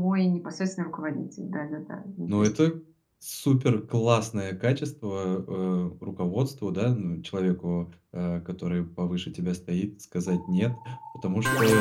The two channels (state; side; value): identical; both; correlation 1.00